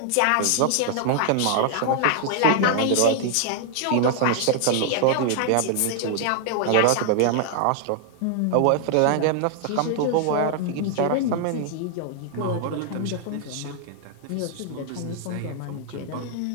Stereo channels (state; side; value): different; both; correlation 0.00